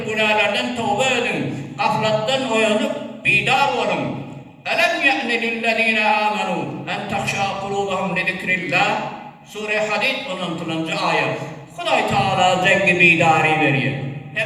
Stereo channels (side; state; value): both; identical; correlation 1.00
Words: günahlardan tövbe edin, gafletten uyanıp bidar olun. Elem ye'ne lillezine amenu en takşa kulubahum li zikrillah. Sure Hadid 16. ayet. Kuday Teala zengi bidari veriyor.